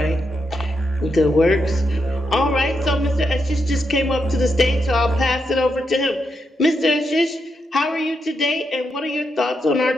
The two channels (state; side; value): normal; both; correlation 0.83